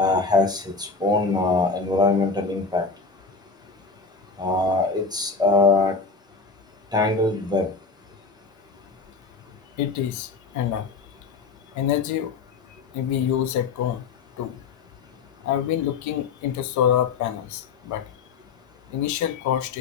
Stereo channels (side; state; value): right; quieter; 4.6 dB